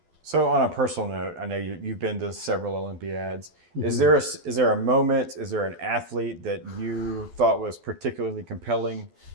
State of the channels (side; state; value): left; late; 12 ms